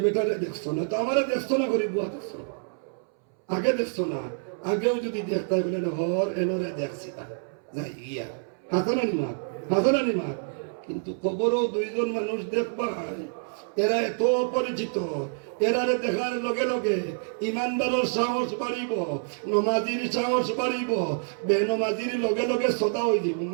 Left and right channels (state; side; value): silent; left; 60 dB below the other